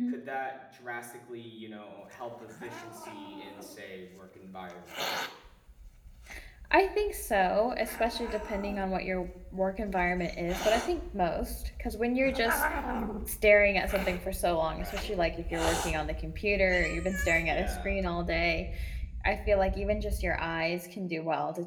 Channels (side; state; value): both; identical; correlation 1.00